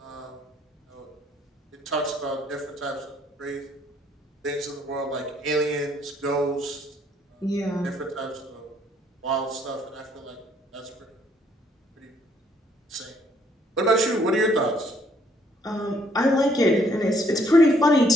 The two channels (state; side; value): normal; both; correlation 0.66